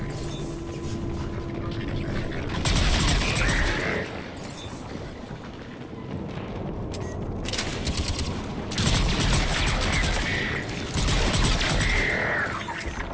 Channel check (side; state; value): both; identical; correlation 1.00